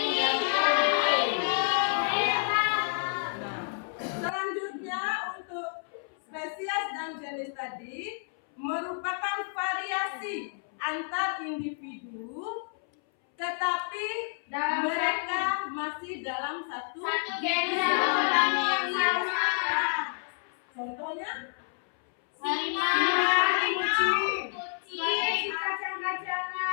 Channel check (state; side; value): silent; right; 58 dB below the other